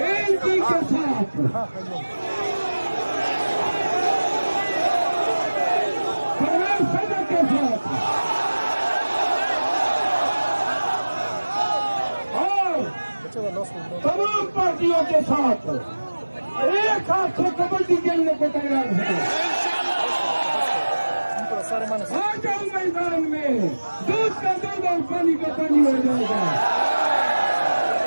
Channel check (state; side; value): inverted; both; correlation -1.00